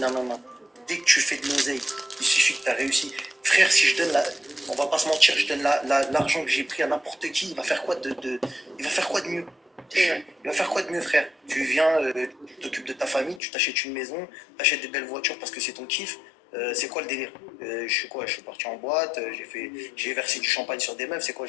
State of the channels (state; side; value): drops out; right; at 13.4 s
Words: Dès que tu fais de l'oseille, il suffit que t'as réussi. Frère si je donne la. On va pas se mentir, je donne l'argent que j'ai pris à n'importe qui, il va faire quoi il va faire quoi de mieux? C'est vrai. Il va faire quoi de mieux, frère? Tu viens, tu t'occupes de ta famille, tu t'achètes une maison, tu achètes des belles voitures parce que c'est ton kiff. C'est quoi le délire? Je suis quoi? Je suis parti en boîte, j'ai versé du champagne sur des meufs, c'est quoi?